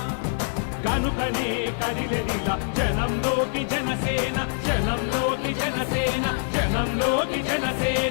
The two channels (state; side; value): silent; right; 62 dB below the other